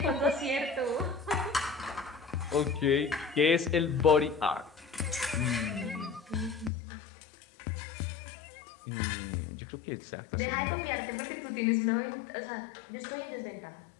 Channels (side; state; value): right; drops out; at 6.7 s